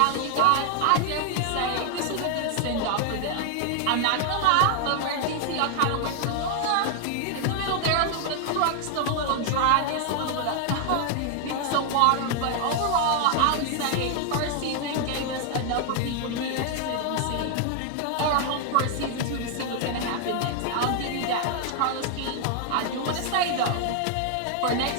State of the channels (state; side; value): different; both; correlation 0.00